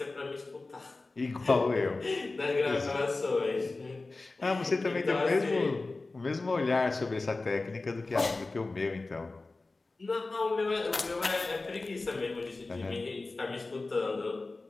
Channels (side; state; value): right; quieter; 3.4 dB